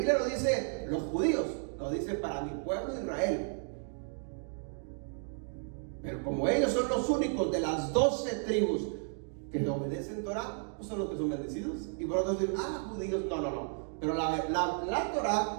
no dice los judíos, lo dice para mi pueblo Israel. Pero como ellos son los únicos de las 12 tribus que le obedecen Torah, pues son los que son bendecidos. Y por otro dicen, judíos, no. Pero la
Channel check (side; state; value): left; silent; 56 dB below the other